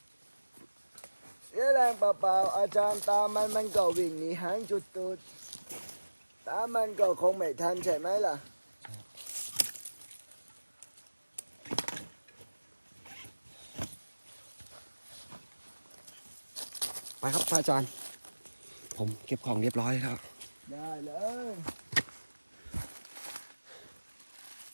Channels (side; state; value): both; inverted; correlation -1.00